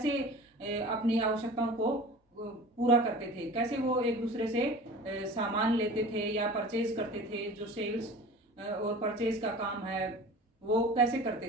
अपनी आवश्यकताओं को पूरा करते थे, कैसे वो एक दूसरे से सामान लेते थे या परचेज करते थे। जो सेल्स और परचेज का काम है वो कैसे करते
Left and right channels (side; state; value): both; normal; correlation 0.38